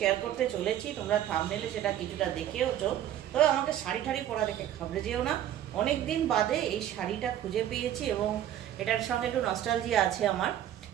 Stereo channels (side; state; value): left; quieter; 11.5 dB